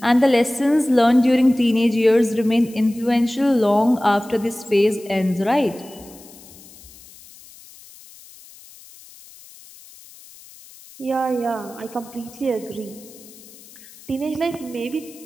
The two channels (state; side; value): noise; left; hiss, 22 dB below the sound